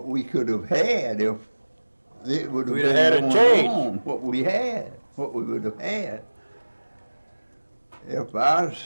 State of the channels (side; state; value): both; inverted; correlation -1.00